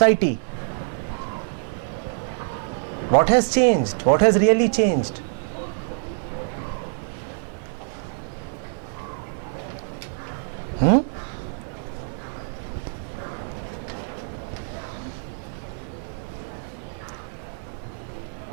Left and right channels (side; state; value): left; silent; 61 dB below the other